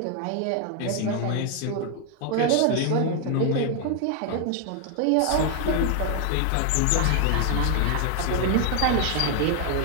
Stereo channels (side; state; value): both; different; correlation 0.00